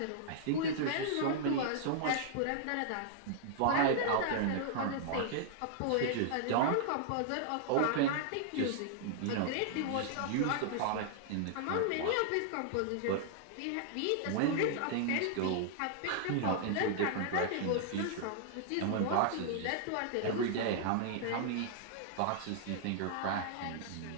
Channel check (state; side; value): different; both; correlation -0.01